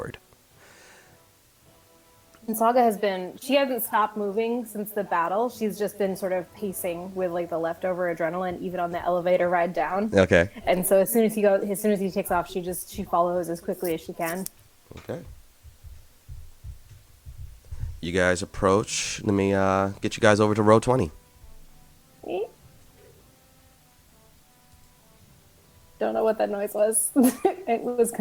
And Saga she hasn't stopped moving since the battle. She's just been sort of pacing with like the leftover adrenaline, even on the elevator ride down. Okay. And so as soon as he takes off, she follows as quickly as she can. Okay. You guys approach. Let me get you guys over to row 20. Don't know what that noise was. It was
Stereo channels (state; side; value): identical; both; correlation 1.00